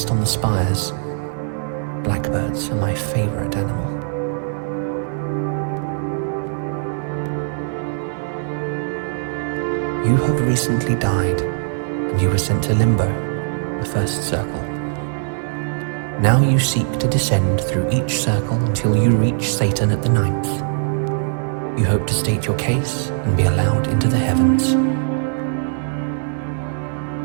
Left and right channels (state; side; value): silent; left; digital silence